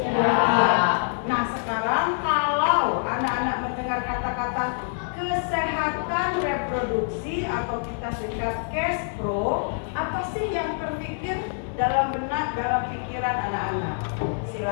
Ya. Nah, sekarang kalau anak-anak mendengar kata-kata kesehatan reproduksi atau kita singkat cash pro, apa sih yang terpikir dalam benak, dalam pikiran anak-anak?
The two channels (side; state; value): right; silent; 58 dB below the other